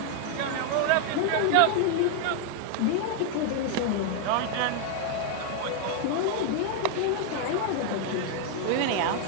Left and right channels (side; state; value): both; different; correlation 0.00